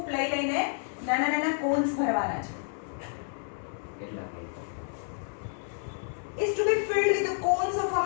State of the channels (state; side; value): silent; right; 58 dB below the other